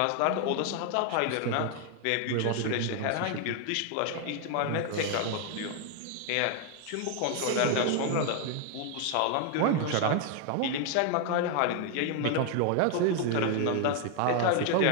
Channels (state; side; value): different; both; correlation 0.00